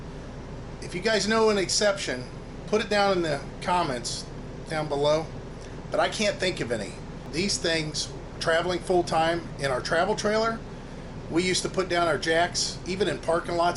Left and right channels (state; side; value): identical; both; correlation 1.00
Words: If you guys know an exception, put it down in the comments down below, but I can't think of any. These things, traveling full-time in our travel trailer, we used to put down our jacks, even in parking